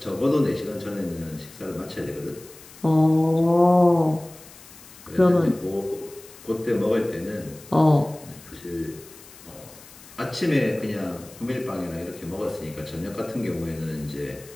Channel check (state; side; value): noise; left; hiss, 20 dB below the sound